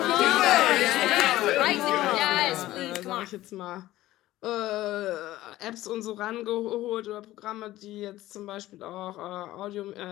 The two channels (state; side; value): quieter; right; 15.7 dB